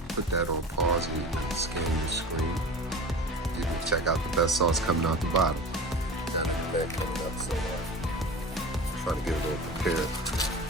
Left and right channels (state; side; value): normal; both; correlation 0.34